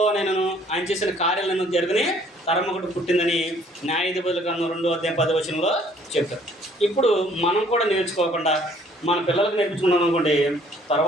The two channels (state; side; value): normal; both; correlation 0.60